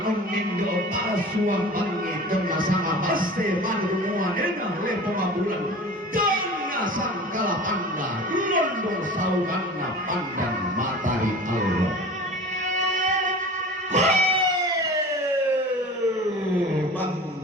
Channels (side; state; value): both; normal; correlation 0.38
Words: longindo pasuang bangi tengah sama baste manrumua nena lepo mabulan tengah sangkala panda londong sauganna pandan matari Allah bang